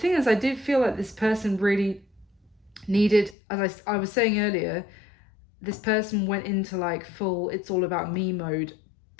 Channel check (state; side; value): drops out; right; at 3.4 s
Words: is, I did feel like this person really needed, as I was saying earlier, this person went into like full it's all about me mode,